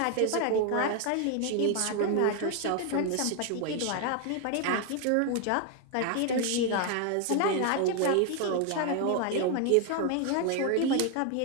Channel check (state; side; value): different; both; correlation 0.01